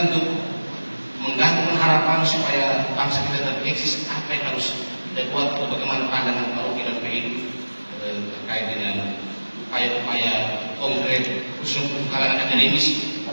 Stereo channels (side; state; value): both; inverted; correlation -1.00